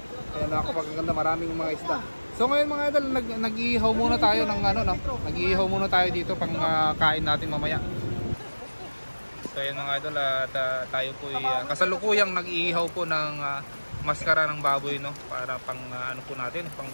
Ayan, napakaganda, maraming mga isda. So ngayon mga idol, nag-iihaw muna tayo ng nag-iihaw muna tayo dito pang kain natin mamaya. So ayan mga idol, at tayo po kasalukuyang nag-iihaw po ng maskara ng baboy, no? Para pang po natin, pang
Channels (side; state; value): both; inverted; correlation -1.00